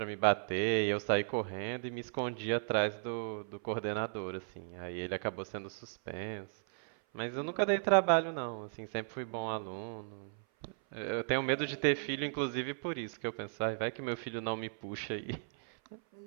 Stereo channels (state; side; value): silent; left; 54 dB below the other